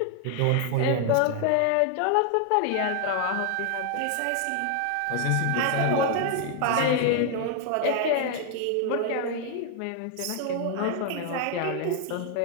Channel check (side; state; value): both; different; correlation 0.00